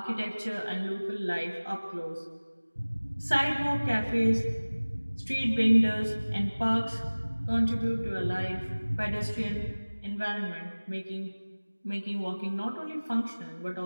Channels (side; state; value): both; inverted; correlation -1.00